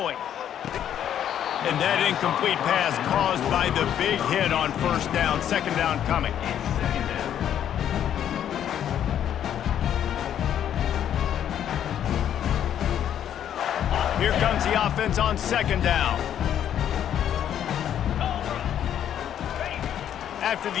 And that incomplete pass caused by the big hit on first down, 2nd down coming. Here comes the offense on 2nd down. After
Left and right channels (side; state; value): right; quieter; 10.0 dB